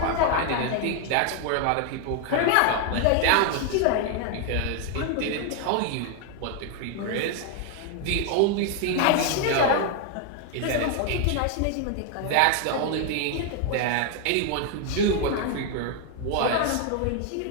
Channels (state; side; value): different; both; correlation 0.00